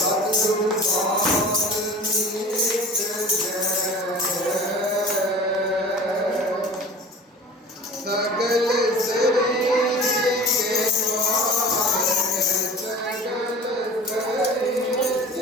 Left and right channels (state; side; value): normal; both; correlation 0.40